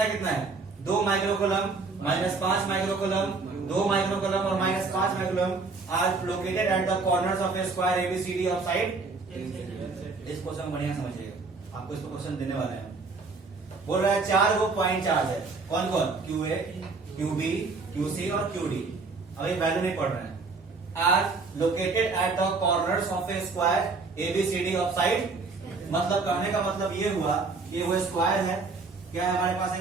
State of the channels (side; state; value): left; quieter; 4.1 dB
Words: कितना है, 2 माइक्रोकूलम, -5 माइक्रोकूलम, 2 माइक्रोकूलम और -5 microcoulomb are located at the corners of a square ABCD of side. इस क्वेश्चन बढ़िया समझिएगा, आपको इसको क्वेश्चन देने वाले हैं। बोल रहा है 4 वो पॉइंट चार्ज है, कौन कौन, QA QB QC और QD। अब ये वैल्यू नहीं पढ़ रहे हैं, are located at the corners of a square ABCD of side. मतलब कहने का मतलब ये हुआ, ये वो स्क्वायर है, क्या है हमारे पास,